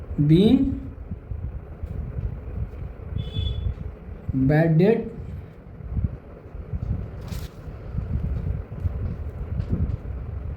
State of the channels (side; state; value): both; identical; correlation 1.00